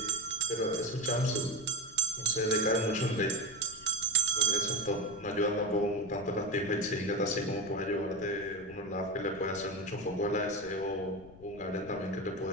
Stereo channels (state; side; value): noise; left; rumble, 20 dB below the sound